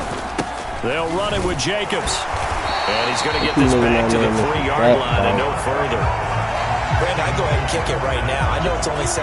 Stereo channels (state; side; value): identical; both; correlation 1.00